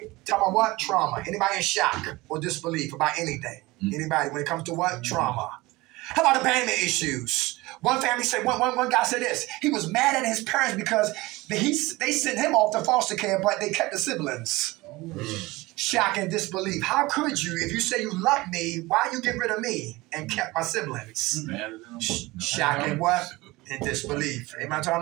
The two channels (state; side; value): quieter; left; 21.1 dB